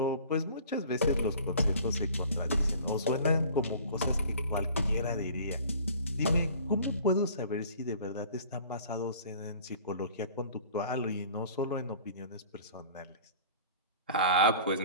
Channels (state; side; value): inverted; both; correlation -0.47